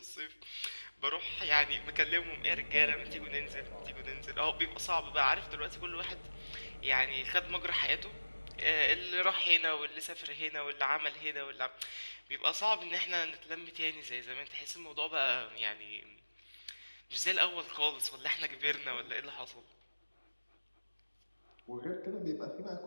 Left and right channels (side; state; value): both; inverted; correlation -1.00